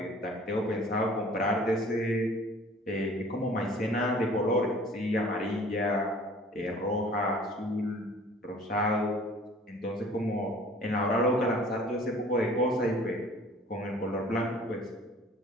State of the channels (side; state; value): both; normal; correlation 0.50